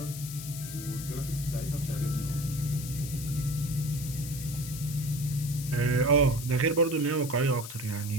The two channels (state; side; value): noise; left; hiss, 10 dB below the sound